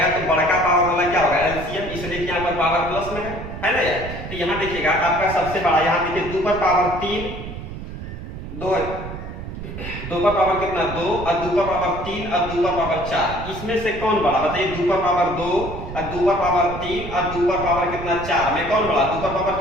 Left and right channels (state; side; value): noise; right; rumble, 9 dB below the sound